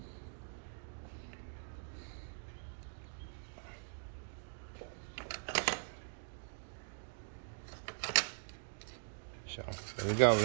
So there we go. We're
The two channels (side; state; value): left; silent; digital silence